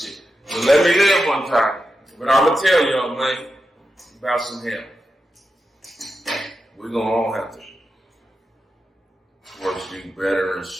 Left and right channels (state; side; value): normal; both; correlation 0.89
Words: But let me live one time. But I'm going to tell y'all, man, about some hell. We're going to all have to work to do better and